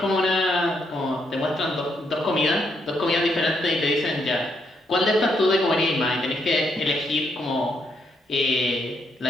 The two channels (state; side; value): normal; both; correlation 0.76